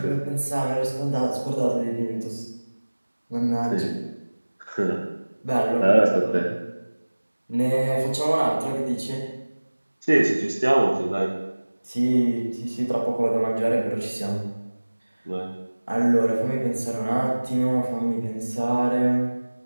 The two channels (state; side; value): inverted; both; correlation -1.00